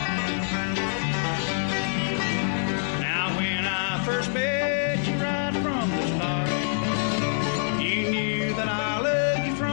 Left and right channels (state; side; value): silent; right; digital silence